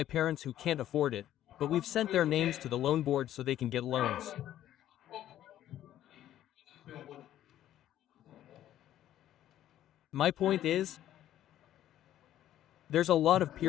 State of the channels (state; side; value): quieter; right; 12.2 dB